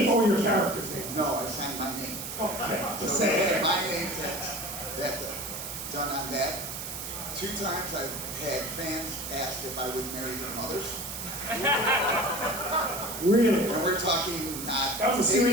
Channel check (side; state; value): right; noise; hiss, 7 dB below the sound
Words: or your character's name? No, I signed my name. Oh, okay. So they had my name done on that. 2 times I've had fans ask if I would marry their mothers. Really? And we're talking not That was a